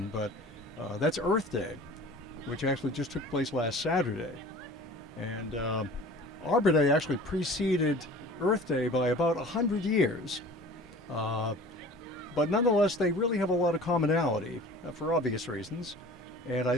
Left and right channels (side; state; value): both; normal; correlation 0.43